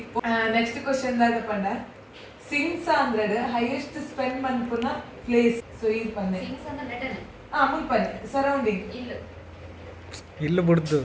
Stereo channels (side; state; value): both; identical; correlation 1.00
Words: ನೆಕ್ಸ್ಟ್ ಕ್ವಶನ್ ದಾಗ ಪಂಡ ಸಿಂಗ್ಸ್ ಅಂದ್ರಡ್ ಹೈಯೆಸ್ಟ್ ಸ್ಪೆಂಡ್ ಮನ್ಪುನ ಪ್ಲೇಸ್ ಸೊ ಈ ಪನ್ನೆ ಮುಲ್ಪನ್ನೆ ಸರೌಂಡಿಂಗ್ ಇಲ್ಲು ಬಿಡ್ದು